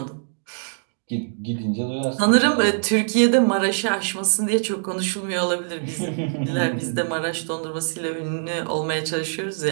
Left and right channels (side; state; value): left; silent; digital silence